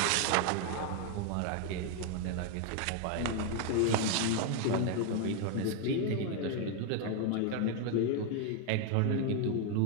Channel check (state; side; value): different; both; correlation 0.01